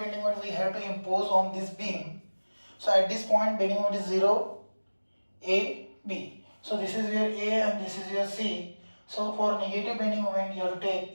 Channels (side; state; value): both; inverted; correlation -1.00